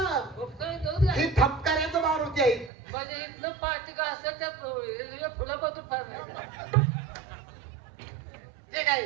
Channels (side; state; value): left; drops out; at 2.7 s